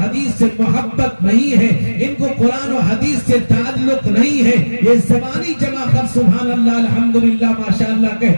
حدیث سے محبت نہیں ہے، ان کو قرآن و حدیث سے تعلق نہیں ہے، یہ زبانی جمع کر سبحان اللہ الحمدللہ ماشاءاللہ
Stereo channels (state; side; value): inverted; both; correlation -1.00